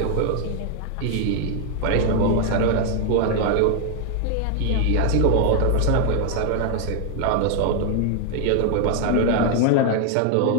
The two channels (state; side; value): different; both; correlation 0.00